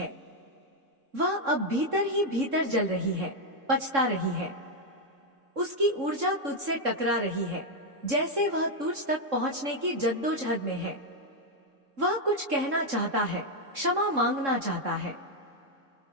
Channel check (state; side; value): late; left; 3.7 ms